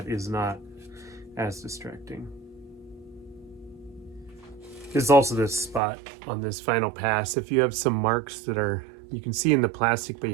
is not as distracting. There's also this spot on this final pass. If you have some marks that are, you can see in the plastic, but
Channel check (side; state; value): left; drops out; at 5.8 s